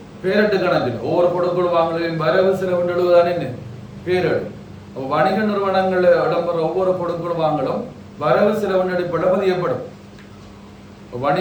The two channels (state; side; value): identical; both; correlation 1.00